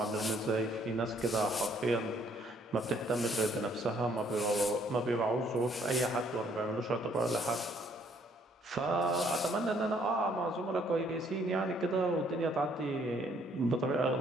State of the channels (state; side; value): normal; both; correlation 0.65